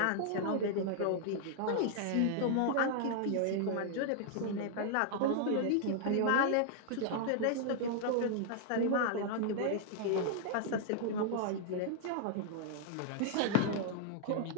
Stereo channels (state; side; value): different; both; correlation -0.01